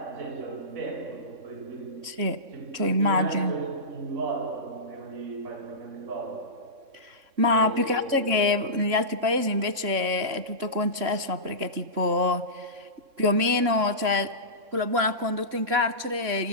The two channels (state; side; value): late; left; 3.6 ms